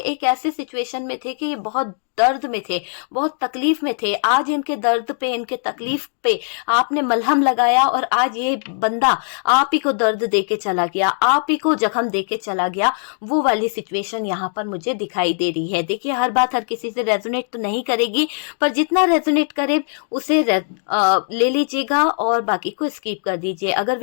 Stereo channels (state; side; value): silent; right; digital silence